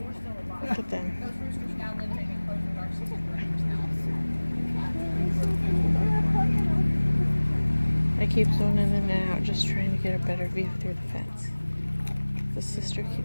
Look at them. I keep zoning in and out, just trying to get a better view through the fence. The sister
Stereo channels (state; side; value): inverted; both; correlation -1.00